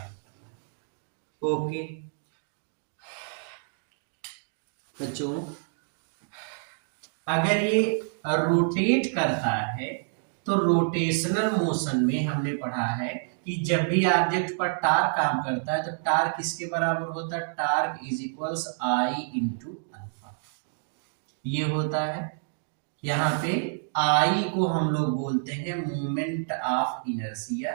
करना है। ओके बच्चों, अगर ये रोटेट करता है तो रोटेशनल मोशन में हमने पढ़ा है कि जब भी ऑब्जेक्ट पर टार्क काम करता है तो टार्क किसके बराबर होता है? Torque is equals I into alpha, ये होता है। यहाँ पे आई को हम लोग बोलते हैं moment of inertia,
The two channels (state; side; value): silent; left; digital silence